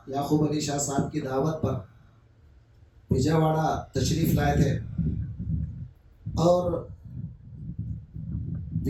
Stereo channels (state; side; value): identical; both; correlation 1.00